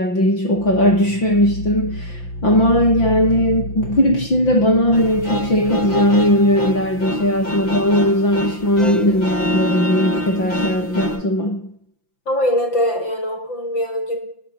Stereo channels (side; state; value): right; late; 5.9 ms